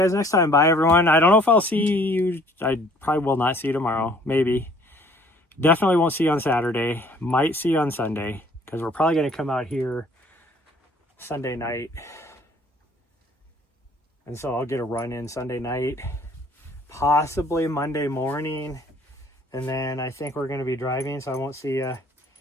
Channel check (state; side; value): normal; both; correlation 0.57